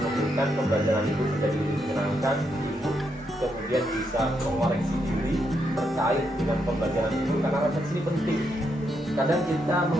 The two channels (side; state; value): both; normal; correlation 0.79